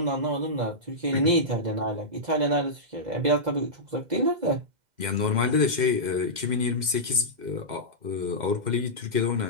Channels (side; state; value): left; late; 2.1 ms